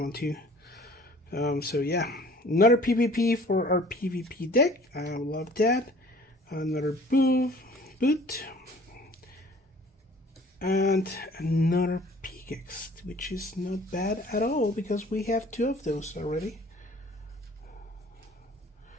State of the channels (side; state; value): both; normal; correlation 0.51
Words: 2. So yeah, another PvP for our PvP deck. I love that. Another boot. And another pickaxe, which is not bad at all because we have 2 of those already.